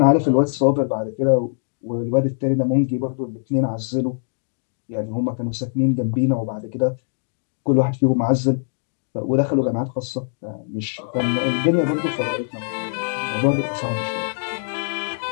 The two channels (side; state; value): right; silent; digital silence